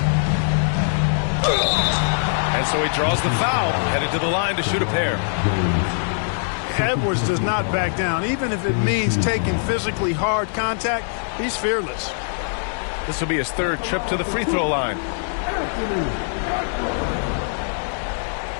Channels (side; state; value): right; silent; digital silence